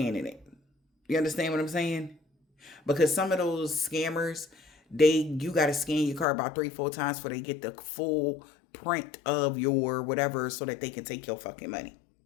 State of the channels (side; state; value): right; drops out; at 6.2 s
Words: it. You understand what I'm saying? Because some of those scammers, you got to scan your card about 3-4 times before they get the full print of your whatever, so that they can take your fucking money.